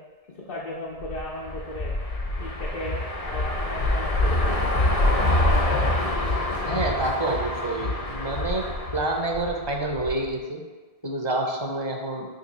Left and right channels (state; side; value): late; right; 1.7 ms